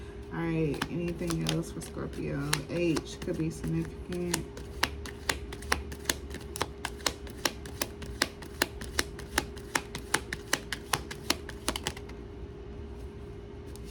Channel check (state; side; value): identical; both; correlation 1.00